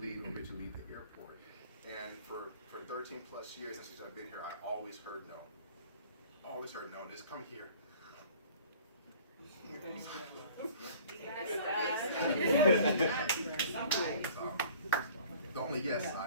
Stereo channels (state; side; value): inverted; both; correlation -0.49